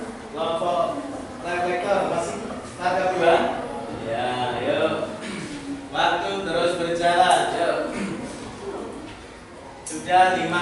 Kelompok reflektor masih paragraf 2. Ya, yuk. Waktu terus berjalan, yuk. Sudah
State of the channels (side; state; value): both; identical; correlation 1.00